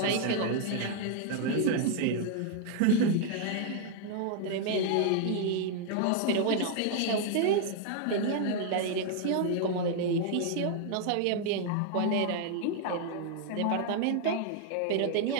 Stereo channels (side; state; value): both; different; correlation 0.00